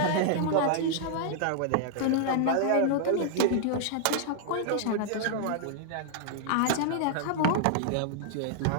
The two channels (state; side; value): different; both; correlation -0.01